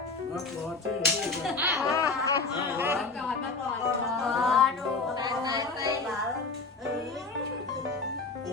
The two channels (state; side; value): quieter; right; 3.9 dB